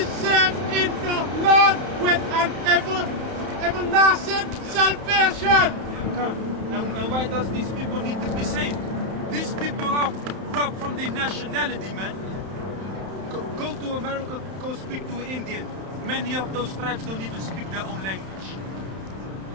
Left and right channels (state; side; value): late; left; 31 ms